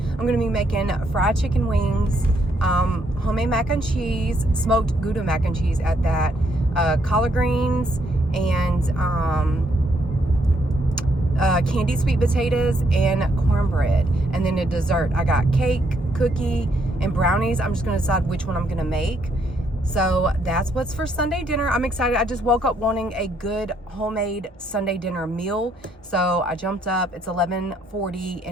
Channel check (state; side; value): normal; both; correlation 0.73